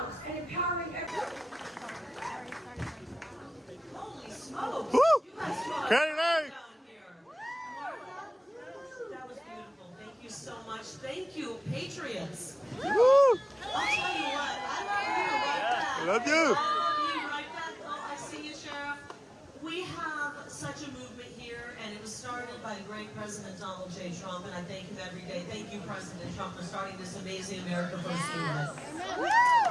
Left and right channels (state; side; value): normal; both; correlation 0.97